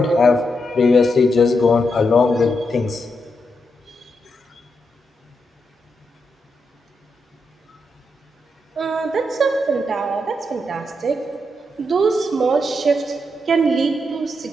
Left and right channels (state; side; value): normal; both; correlation 0.83